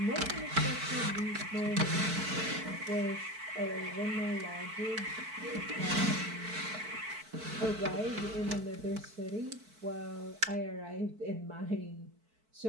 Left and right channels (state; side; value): late; left; 4.5 ms